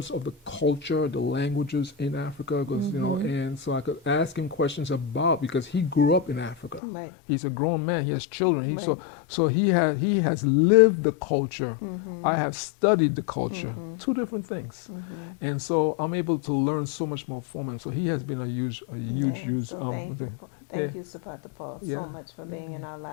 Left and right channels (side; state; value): right; drops out; at 6.8 s